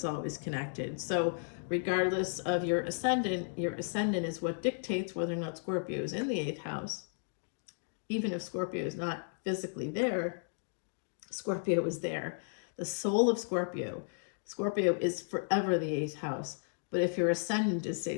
always connected. So regardless of your ascendant is what dictates whether or not Scorpio is in the 8th house. Even if Scorpio is not physically there, Scorpio is there. The soul of Scorpio is forever the 8th house. But if your ascendant is, say,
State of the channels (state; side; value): silent; right; digital silence